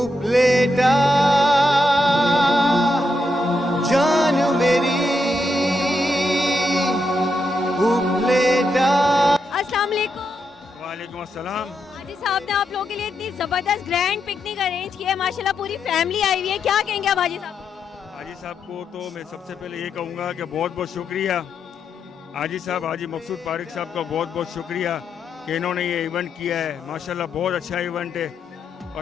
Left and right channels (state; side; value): normal; both; correlation 0.82